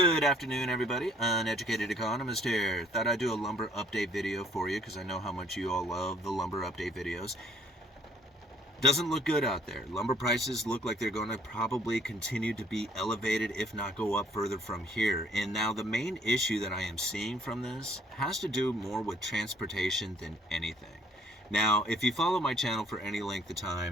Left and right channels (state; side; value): normal; both; correlation 0.61